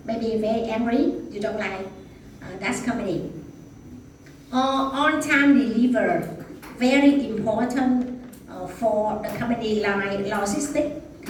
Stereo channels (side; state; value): both; identical; correlation 1.00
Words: very angry. You don't like that company. Or on-time deliver, very important for the company like logistic